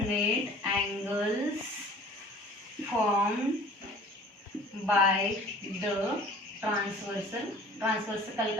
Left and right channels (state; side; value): normal; both; correlation 0.48